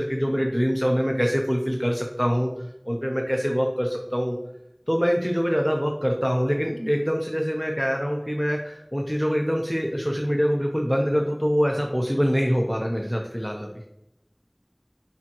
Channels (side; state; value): both; identical; correlation 1.00